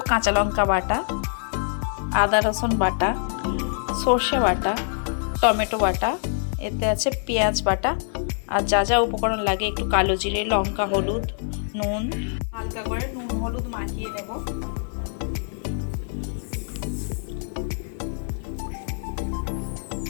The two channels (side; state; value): right; silent; digital silence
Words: কাঁচা লঙ্কা বাটা, আদা রসুন বাটা, সর্ষে বাটা, টমেটো বাটা, এতে আছে পেঁয়াজ বাটা, আর যা যা উপকরণ লাগে একটু কালো জিরে, লঙ্কা, হলুদ, নুন, হালকা করে নুন হলুদ মাখিয়ে নেব।